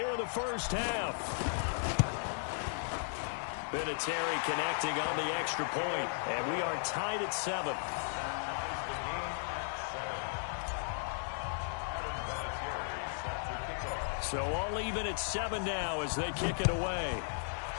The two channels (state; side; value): silent; right; digital silence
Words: in the first half. Vinatieri connecting on the extra point, and we are tied at 7. So all even at 7 now as they kick it away.